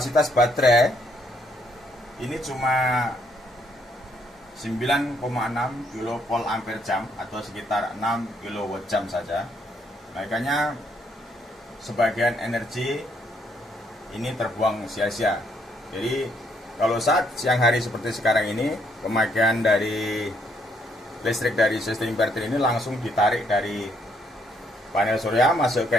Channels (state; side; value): normal; both; correlation 0.71